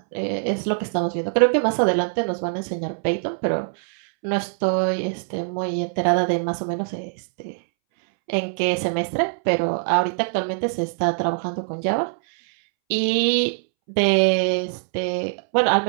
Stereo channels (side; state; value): left; silent; 64 dB below the other